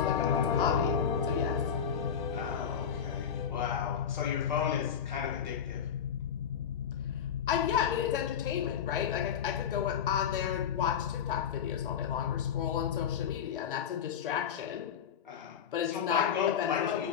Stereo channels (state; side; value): quieter; right; 8.0 dB